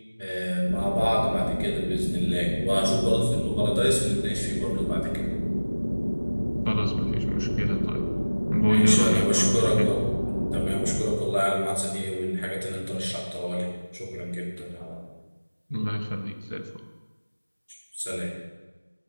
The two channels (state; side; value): inverted; both; correlation -1.00